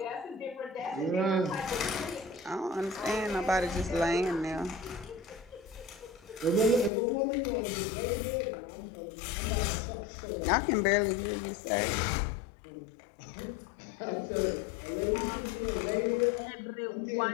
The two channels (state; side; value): drops out; right; at 6.9 s